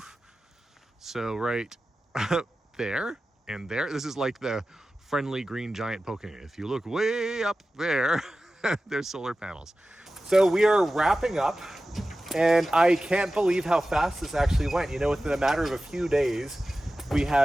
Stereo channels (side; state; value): both; normal; correlation 0.95